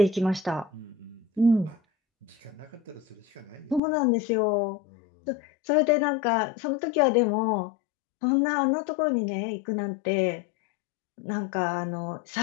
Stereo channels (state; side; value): drops out; right; at 3.8 s